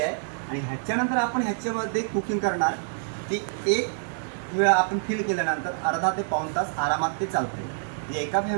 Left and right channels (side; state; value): left; silent; 60 dB below the other